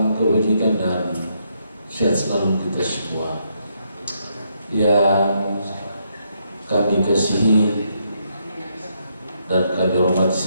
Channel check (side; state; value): both; inverted; correlation -0.76